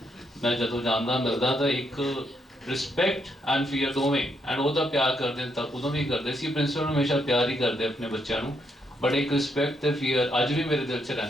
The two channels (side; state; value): both; normal; correlation 0.77